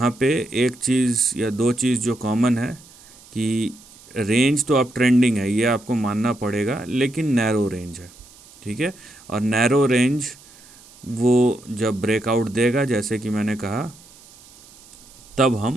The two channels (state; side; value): noise; right; hiss, 24 dB below the sound